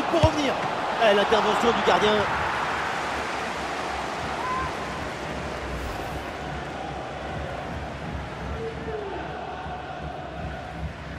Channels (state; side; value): identical; both; correlation 1.00